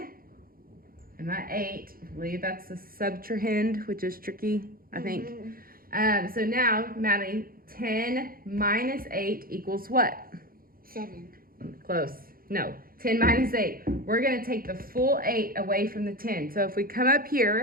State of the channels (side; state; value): left; late; 0.42 ms